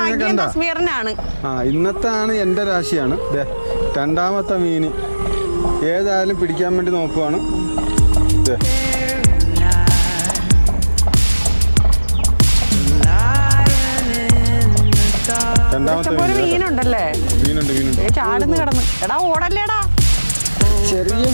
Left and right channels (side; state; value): both; inverted; correlation -1.00